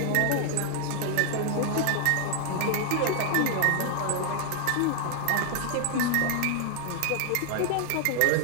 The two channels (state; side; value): different; both; correlation 0.00